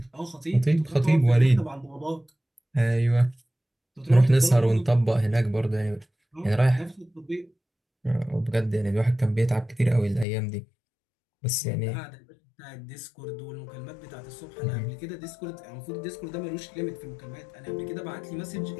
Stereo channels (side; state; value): right; drops out; at 10.2 s